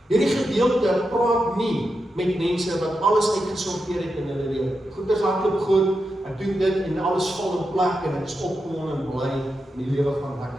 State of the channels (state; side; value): normal; both; correlation 0.87